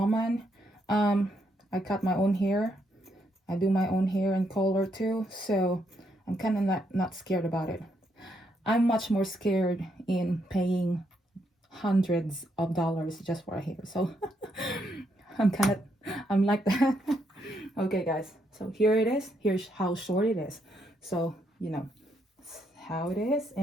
I cut my own hair. I do my own hair and color too, so I'm kind of not scared about it. I'm much more scared in paying hundreds of dollars just for a hair. So I'm like that. Okay, guys. So here it is. Here's how short it is. So, you know, how it is,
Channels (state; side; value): normal; both; correlation 0.76